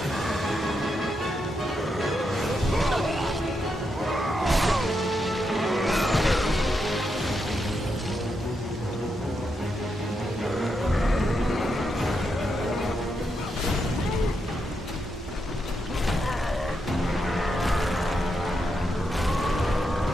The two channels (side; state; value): both; normal; correlation 0.83